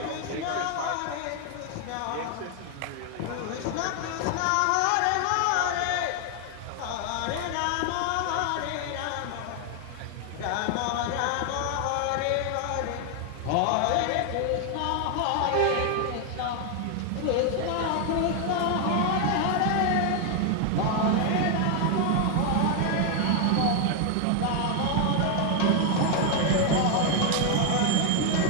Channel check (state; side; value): different; both; correlation 0.00